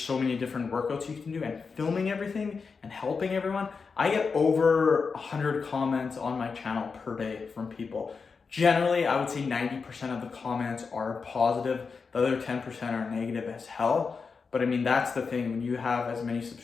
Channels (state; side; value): quieter; right; 5.1 dB